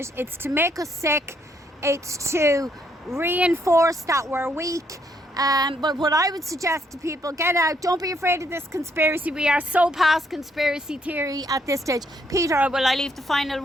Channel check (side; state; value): both; normal; correlation 0.72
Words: It's to make us sick. It's to reinforce that we're weak. But what I would suggest to people, get out. Don't be afraid of this conspiracy. We are so past conspiracy theory at this stage. Peter, will I leave the final